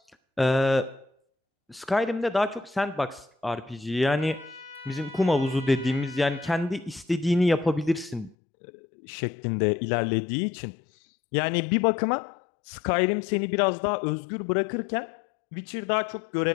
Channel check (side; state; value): right; drops out; at 8.3 s